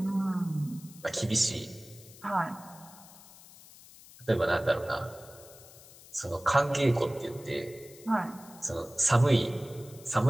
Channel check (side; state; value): left; noise; hiss, 21 dB below the sound